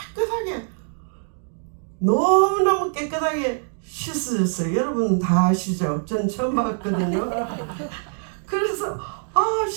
너무너무 깨끗하게 씻어졌어요. 여러분은 다 아시죠? 전 처음 봤거든요. 그래서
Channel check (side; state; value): left; silent; digital silence